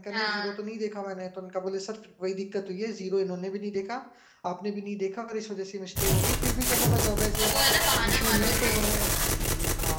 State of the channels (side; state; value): both; identical; correlation 1.00